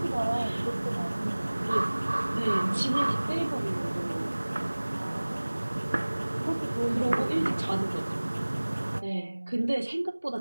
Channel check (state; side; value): inverted; both; correlation -1.00